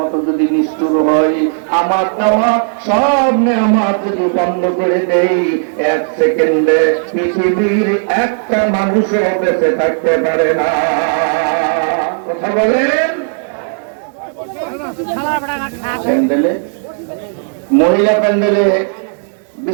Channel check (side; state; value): left; silent; 71 dB below the other